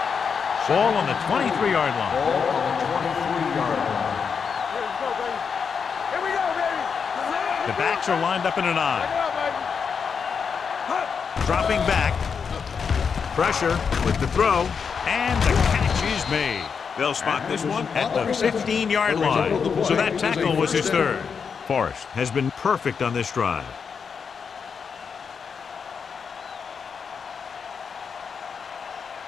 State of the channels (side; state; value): right; quieter; 6.2 dB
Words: Ball on the 23-yard line. Ball on the 23-yard line. Here we go, baby. The backs are lined up in an I. Dropping back. Pressure with the throw. And the catch is made. They'll spot this one at the 15-yard line. So that tackle was his third. Forrest has been perfect on this drive.